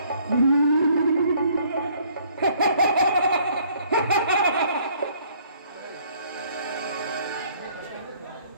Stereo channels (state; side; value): inverted; both; correlation -0.61